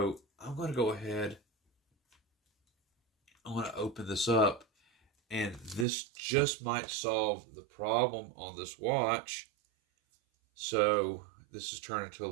I'm going to go ahead. I'm going to open this up, and this just might solve the problem on this watch. So this is turning into a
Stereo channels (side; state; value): left; drops out; at 5.9 s